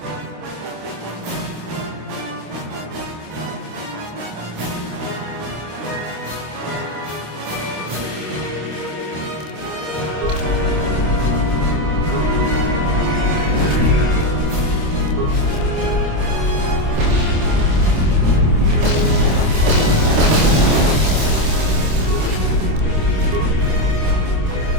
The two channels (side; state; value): left; late; 26 ms